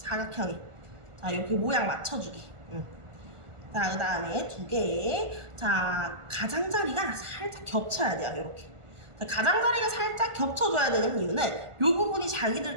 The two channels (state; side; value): late; left; 1.4 ms